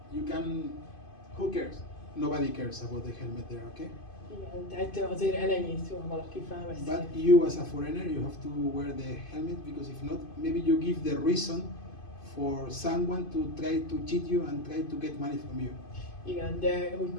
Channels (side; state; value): right; late; 2.5 ms